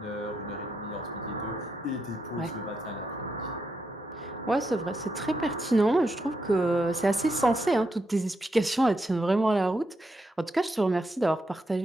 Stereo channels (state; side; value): normal; both; correlation 0.82